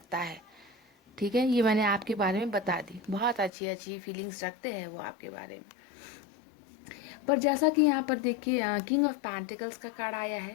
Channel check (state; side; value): drops out; right; at 3.5 s